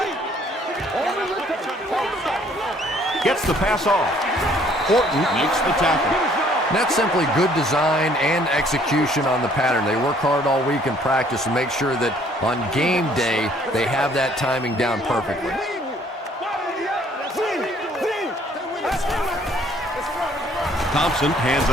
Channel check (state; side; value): normal; both; correlation 0.60